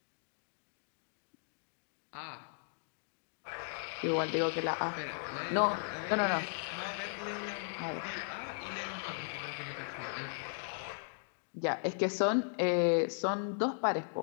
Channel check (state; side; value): silent; right; digital silence